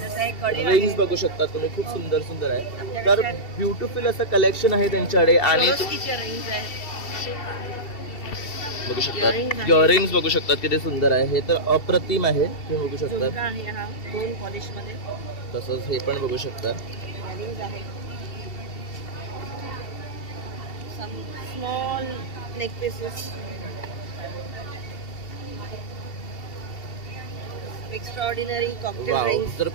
एक कडी रिंग्स आहे. बघू शकता तुम्ही, खूप सुंदर सुंदर आहे. आपल्याकडे तर त्या- ब्युटिफुल असं कलेक्शन आहे त्यांच्याकडे. आणि Swarovskiचे rings आहेत. बघू शकतात Earrings आहेत. इयरिंग्स बघू शकतात किती सुंदर आहे. हे तर अप्रतिम आहे, तुम्ही बघू शकता. झुमका आहे हा 2 पॉलिशमध्ये. तसंच हे पण बघू शकता. Earrings आहेत. Some small neck pieces. Extraordinary cocktail wow, rings. जर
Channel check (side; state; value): right; late; 2.7 ms